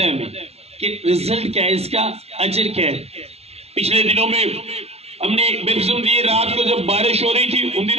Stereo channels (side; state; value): left; late; 0.30 ms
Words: है हमें कि रिजल्ट क्या है, इसका अजर क्या है। पिछले दिनों में हमने बपतिस्मा दिए, रात को जब बारिश हो रही थी, उन